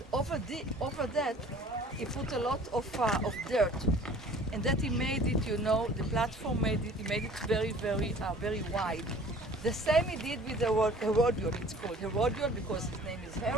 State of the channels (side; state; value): both; normal; correlation 0.49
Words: over that he put a lot of dirt. And that he made it, the platform he made it very, very wide. The same he did with the Herodion. It's called Herodion because his name is